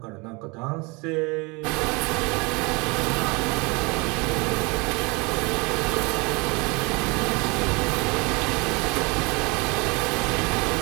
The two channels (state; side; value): quieter; left; 27.7 dB